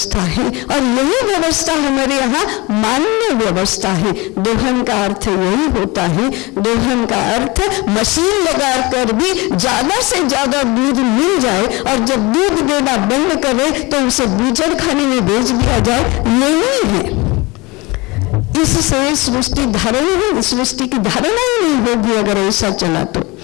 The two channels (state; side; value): quieter; right; 24.1 dB